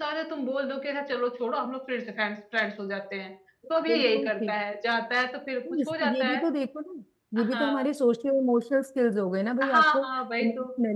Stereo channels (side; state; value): both; identical; correlation 1.00